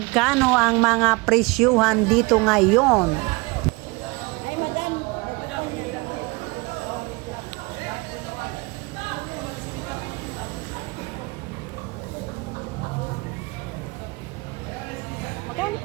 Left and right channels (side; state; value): left; quieter; 26.0 dB